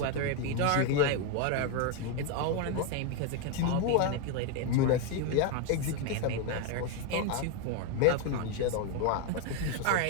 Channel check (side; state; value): both; different; correlation 0.01